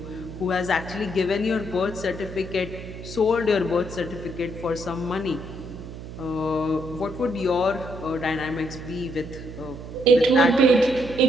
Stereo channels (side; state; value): right; noise; hum, 11 dB below the sound